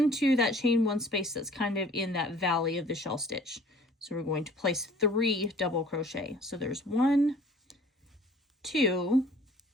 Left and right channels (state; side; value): normal; both; correlation 0.52